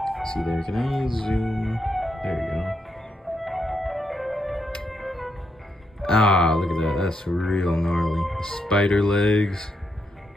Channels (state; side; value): normal; both; correlation 0.81